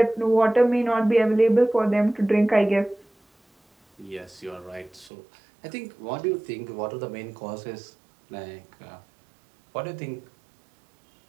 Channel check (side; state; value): left; drops out; at 5.1 s